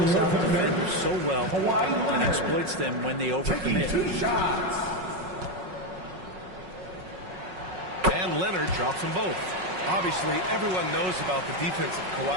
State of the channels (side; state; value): left; late; 5.4 ms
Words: out defenders so well and exploits them when they overcommit. And Leonard drops them both. Obviously, everyone knows about the defense of